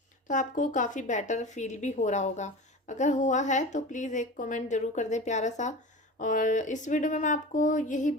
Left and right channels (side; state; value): both; normal; correlation 0.32